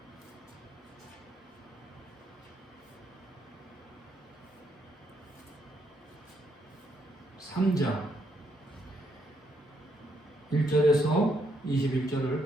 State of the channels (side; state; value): both; normal; correlation 0.75